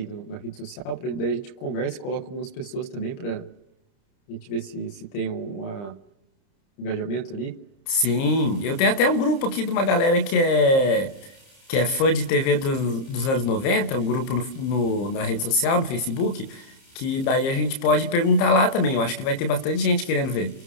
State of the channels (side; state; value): right; late; 30 ms